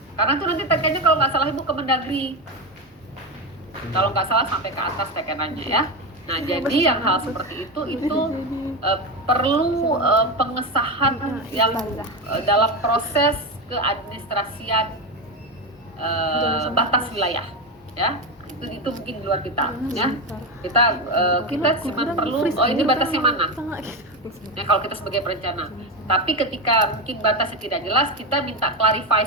Karena itu nanti tekennya kalau nggak salah ibu ke Mendagri. Kalau nggak salah sampai ke atas tekenannya ya. Nah, jadi yang hal seperti itu perlu pengesahan yang dalam proses keadministrasian batas wilayah, ya. Itu mungkin di luar kita, ya. Kita cuma perlu, ini batasnya mana? Ya, kalau kita sebagai perencana. Tapi ketika mungkin batasnya tidak jelas, kita minta clarify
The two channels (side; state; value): both; normal; correlation 0.14